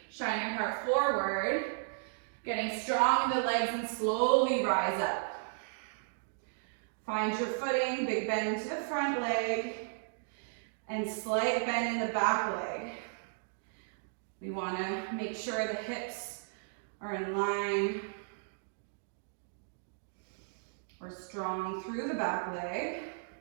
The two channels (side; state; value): left; silent; digital silence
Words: Shine your heart forward. Getting strong in the legs and slowly rise up. Find your footing, big bend into the front leg, and slight bend in the back leg. We want to make sure the hips are in line. We're strong through the back leg.